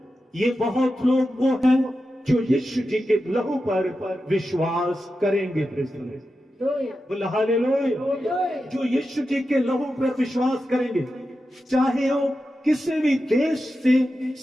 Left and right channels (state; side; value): normal; both; correlation 0.91